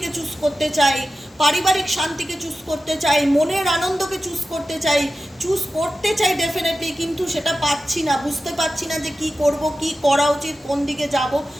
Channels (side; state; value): both; normal; correlation 0.93